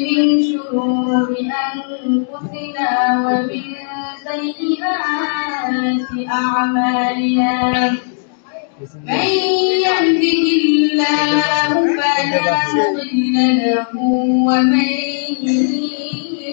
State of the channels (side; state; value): right; silent; digital silence